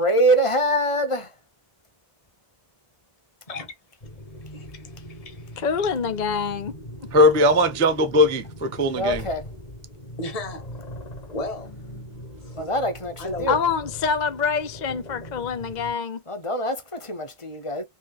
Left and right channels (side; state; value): right; late; 1.5 ms